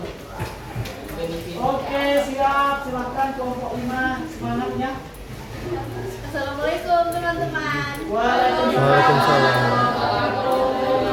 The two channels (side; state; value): both; identical; correlation 1.00